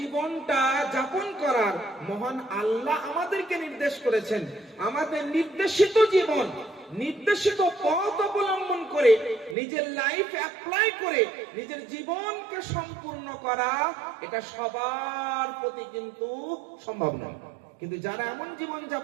যাপন করার মহান আল্লাহ আমাদেরকে নির্দেশ করেছেন, আমাদের নির্দেশিত জীবন, নির্দেশিত পথ অবলম্বন করে নিজের লাইফ অ্যাপ্লাই করে নিজের জীবনকে সম্পূর্ণ করা, এটা সবার প্রতি কিন্তু সম্ভব নয়। কিন্তু যারা এমন জীবন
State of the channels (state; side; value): drops out; left; at 9.6 s